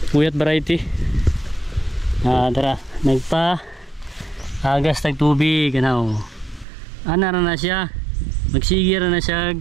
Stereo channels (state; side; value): drops out; left; at 6.7 s